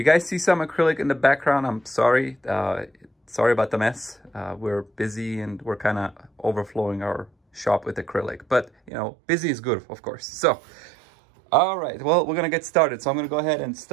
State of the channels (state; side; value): drops out; left; at 8.9 s